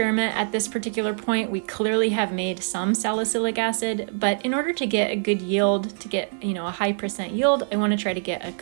at this particular point. We clearly have made some salicylic acid, but in order to get a good yield, to get a high % yield, I want to try to get a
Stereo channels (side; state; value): left; silent; digital silence